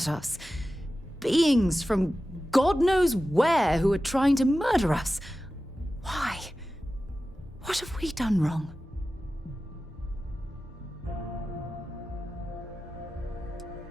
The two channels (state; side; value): normal; both; correlation 0.94